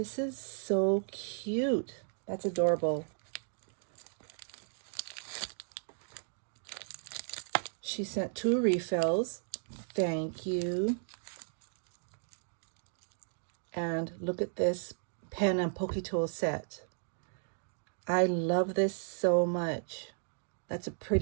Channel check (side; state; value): left; silent; digital silence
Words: is so cute. That's adorable. She sent 2 refills. Thank you. And look at this pen and pokey tool set. I love this so much. That's a